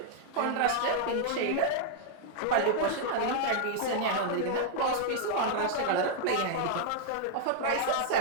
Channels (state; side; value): different; both; correlation -0.01